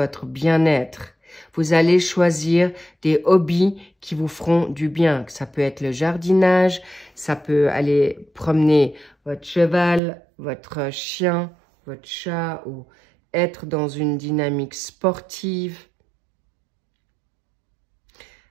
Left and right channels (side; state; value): left; drops out; at 10.0 s